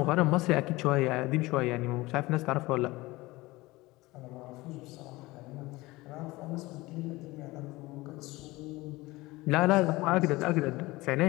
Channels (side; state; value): right; quieter; 20.6 dB